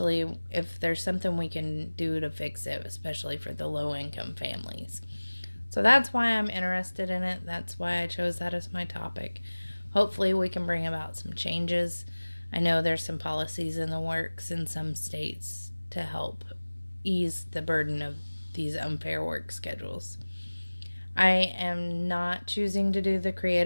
if there's something we can do to fix it, especially for the low income families. So that's why I'm interested in it. That's why I chose that as my topic. Hopefully we can bring about some changes. I know there's some policies in the works in some states to help ease the burden of these unfair work schedules. I am not choosing to do the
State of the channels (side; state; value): both; inverted; correlation -1.00